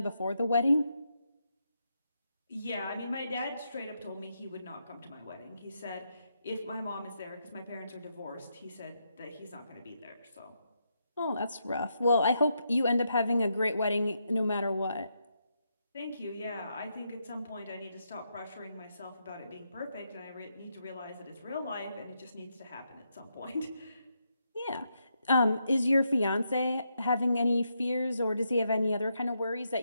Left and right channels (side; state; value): both; inverted; correlation -0.81